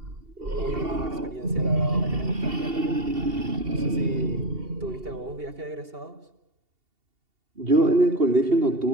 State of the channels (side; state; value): left; late; 2.7 ms